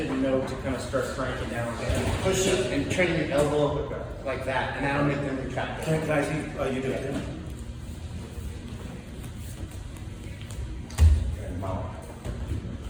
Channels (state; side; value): identical; both; correlation 1.00